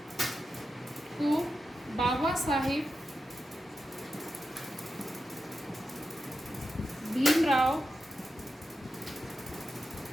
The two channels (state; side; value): normal; both; correlation 0.90